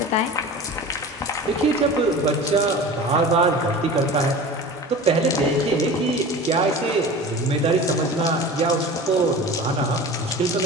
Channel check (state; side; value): normal; both; correlation 0.36